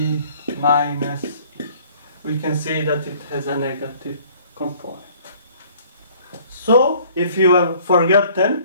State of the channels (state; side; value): inverted; both; correlation -0.55